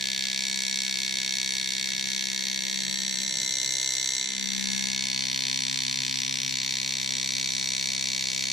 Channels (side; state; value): both; normal; correlation 0.67